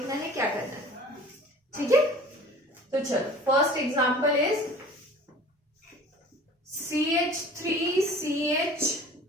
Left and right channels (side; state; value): both; normal; correlation 0.45